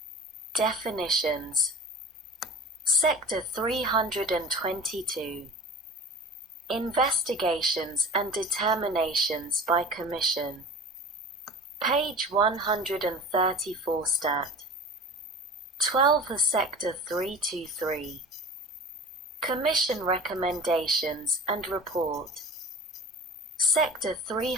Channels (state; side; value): normal; both; correlation 0.37